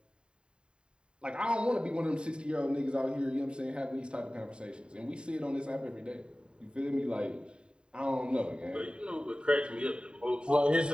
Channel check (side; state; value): left; late; 0.051 ms